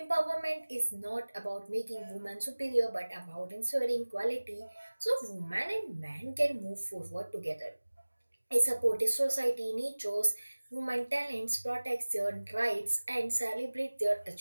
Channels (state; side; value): inverted; both; correlation -1.00